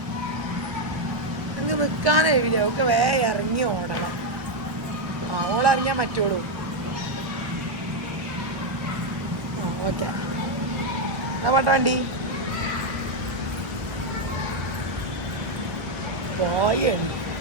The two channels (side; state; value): left; late; 1.1 ms